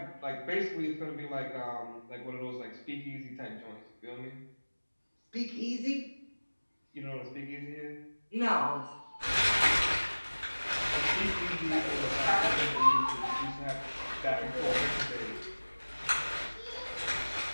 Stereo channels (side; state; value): both; inverted; correlation -1.00